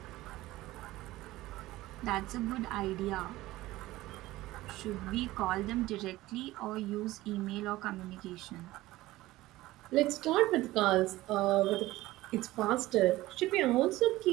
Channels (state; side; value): quieter; left; 17.5 dB